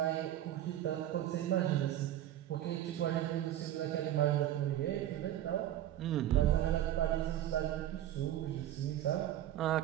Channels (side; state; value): left; quieter; 12.4 dB